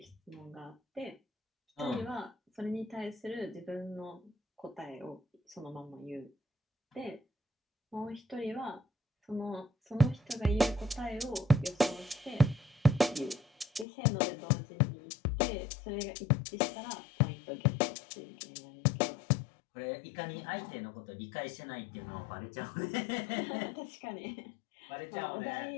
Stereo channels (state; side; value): drops out; right; at 13.9 s